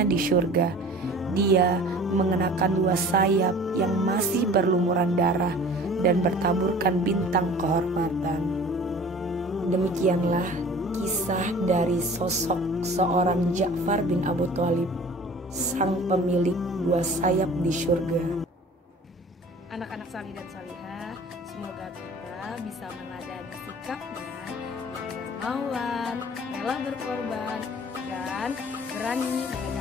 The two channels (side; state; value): both; normal; correlation 0.45